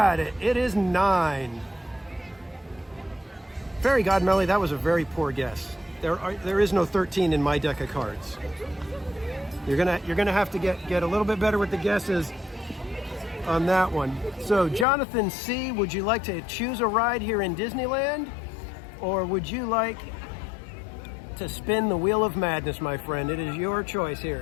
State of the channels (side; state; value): right; drops out; at 14.9 s